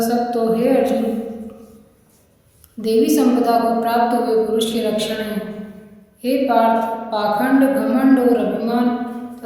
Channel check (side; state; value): both; identical; correlation 1.00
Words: सब तो है अर्जुन देवी संपदा को प्राप्त हुए पुरुष के लक्षण हैं। हे पार्थ, पाखंड, घमंड और अभिमान